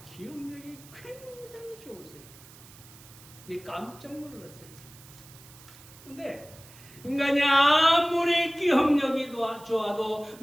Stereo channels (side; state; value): right; noise; hiss, 21 dB below the sound